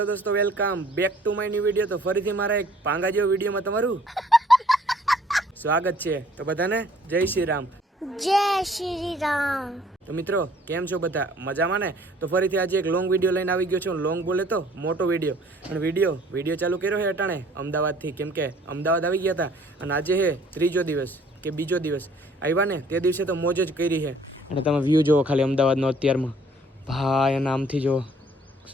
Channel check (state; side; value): normal; both; correlation 0.57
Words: દોસ્તો, welcome back to my new video. તો ફરીથી મારા એક પાંગા જેવો વિડીયોમાં તમારું સ્વાગત છે. તો બધાને જય શ્રી રામ. જય શ્રી રામ. તો મિત્રો, કેમ છો બધા? મજામાં ને? તો ફરીથી આજે એક લોંગ વિડીયો લઈને આવી ગયો છું. લોંગ બોલે તો મોટો વિડીયો. અને વિડીયો ચાલુ કર્યો છે અટાણે અમદાવાદથી, કેમ કે અમદાવાદ આવી ગયા હતા અને આજે છે ત્રીજો દિવસ કે બીજો દિવસ આવ્યા ને. તે દિવસે તો મોજ જ કરી છે. અને તમે વ્યૂ જુઓ ખાલી અમદાવાદનો અત્યારમાં. ભાઈ એના આમથી જુઓ.